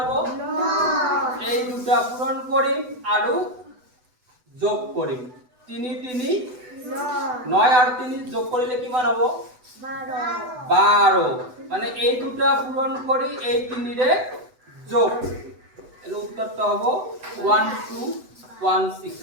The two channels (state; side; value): late; left; 8.0 ms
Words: 9 এই দুটা পূৰণ কৰিম আৰু যোগ কৰিম 3 3 9 আৰ 3 যোগ কৰিলে কিমান হ'ব 12 মানে এই দুটা পূৰণ কৰি এই 3 ৰে যোগ এৰ উত্তৰটা হ'ব 1216